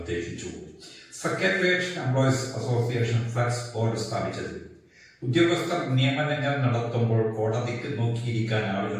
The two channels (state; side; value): identical; both; correlation 1.00